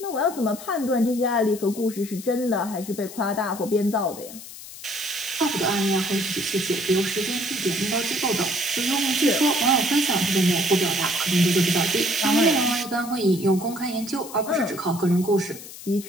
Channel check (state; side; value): noise; left; hiss, 14 dB below the sound